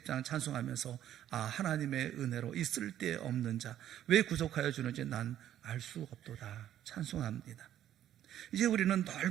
찬송하면서 하나님의 은혜로 이 쓸데없는 자 왜 구속하여 주는지 난 알 수 없도다 찬송합니다. 이제 우리는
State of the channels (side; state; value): left; quieter; 11.5 dB